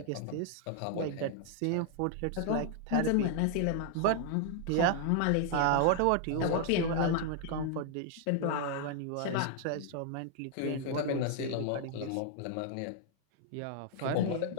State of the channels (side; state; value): both; different; correlation 0.00